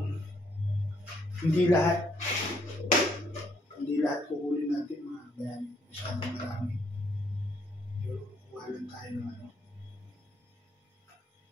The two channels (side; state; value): both; normal; correlation 0.70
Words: hindi lahat kukunin natin mga kabayani. Masyadong marami. Kukuha lang tayo ng ano.